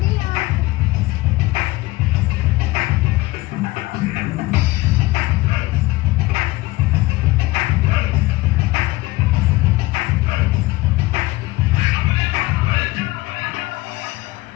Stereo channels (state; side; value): quieter; right; 20.1 dB